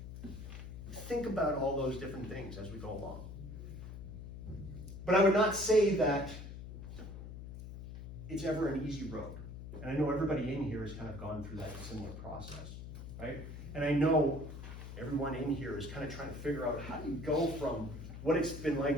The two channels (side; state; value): left; noise; hum, 10 dB below the sound